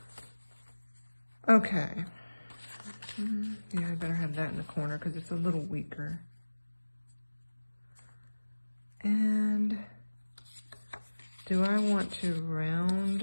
Okay. Yeah, I better have that in the corner because it's a little weaker. And do I want to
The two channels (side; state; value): both; inverted; correlation -1.00